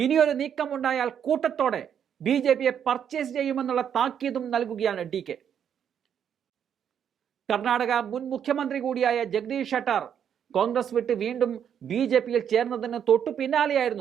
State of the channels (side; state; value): left; quieter; 8.6 dB